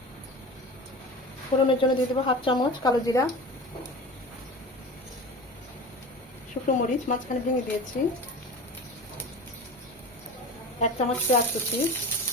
ফোড়নের জন্য দিয়ে দেবো 1/2 চামচ কালো জিরা, শুকনো মরিচ মাঝখানে ভেঙে দিয়েছি, 1 চামচ পেঁয়াজ কুচি।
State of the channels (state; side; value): normal; both; correlation 0.33